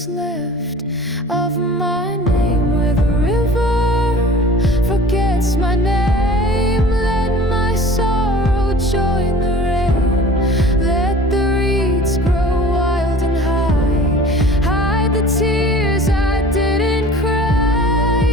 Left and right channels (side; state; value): both; normal; correlation 0.44